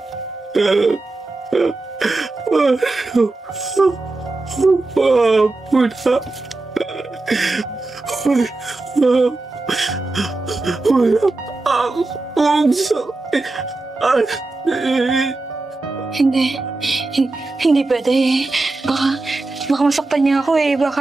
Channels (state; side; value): quieter; left; 3.2 dB